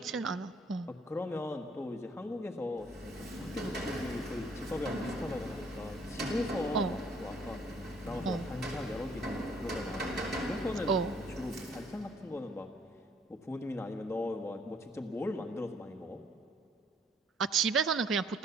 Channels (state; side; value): normal; both; correlation 0.62